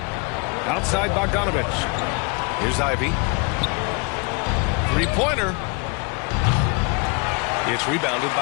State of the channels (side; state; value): right; quieter; 31.6 dB